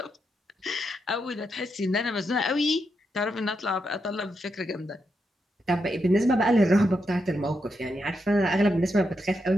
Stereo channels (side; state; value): both; normal; correlation 0.83